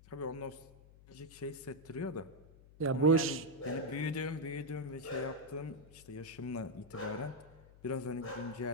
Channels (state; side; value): noise; left; hum, 22 dB below the sound